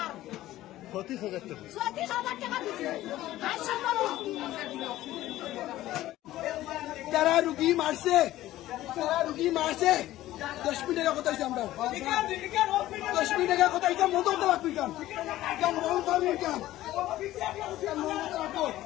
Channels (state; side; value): quieter; right; 15.1 dB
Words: 35,000 টাকা। যারা রুগী মারছে 10 মিনিট টাকা কথা আমরা 10 মিনিট টাকা কথা এটা মতো লাগবে